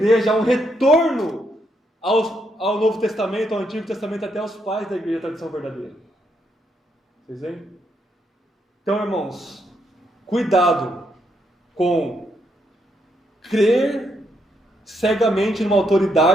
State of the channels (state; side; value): normal; both; correlation 0.77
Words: há um retorno ao Novo Testamento, ao Antigo Testamento, até aos pais da igreja, a tradição verdadeira. Vocês veem? Então, irmãos, cuidado com crer cegamente numa